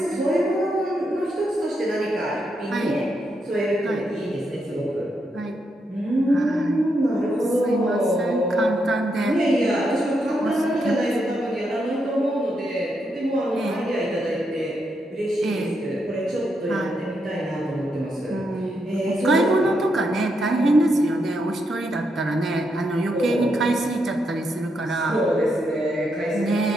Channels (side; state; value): both; normal; correlation 0.81